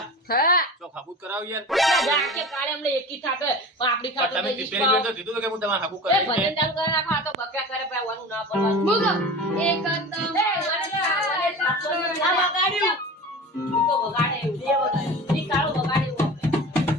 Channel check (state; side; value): normal; both; correlation 0.34